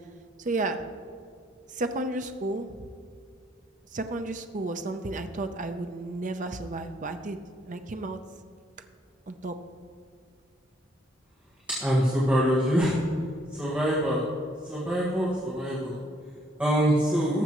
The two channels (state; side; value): normal; both; correlation 0.67